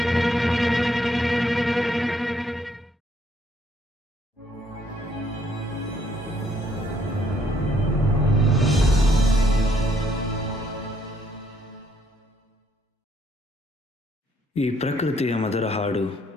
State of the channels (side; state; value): both; normal; correlation 0.69